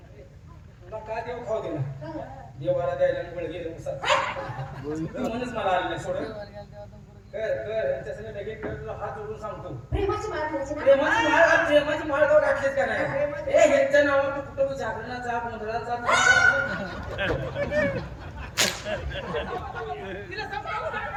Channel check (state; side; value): identical; both; correlation 1.00